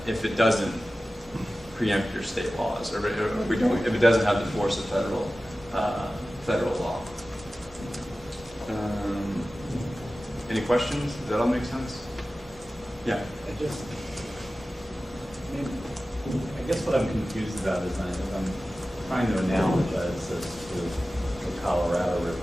if it doesn't preempt your state laws, or if it doesn't have the force of federal law. Any questions? Does that all make sense? Yeah. I guess what I'm confused about is I'm trying to analogize this to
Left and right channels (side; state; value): both; normal; correlation 0.95